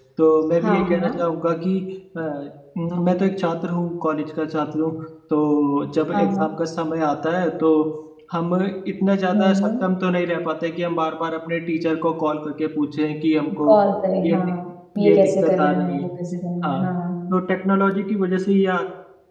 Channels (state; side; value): identical; both; correlation 1.00